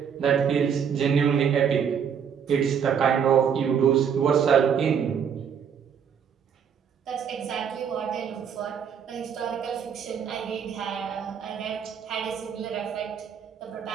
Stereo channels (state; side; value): quieter; left; 7.6 dB